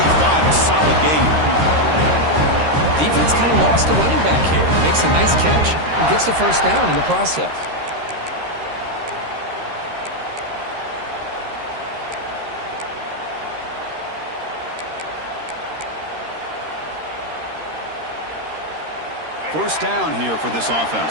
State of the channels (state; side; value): late; left; 13 ms